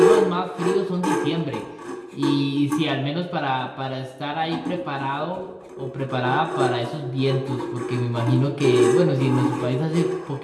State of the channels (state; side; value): identical; both; correlation 1.00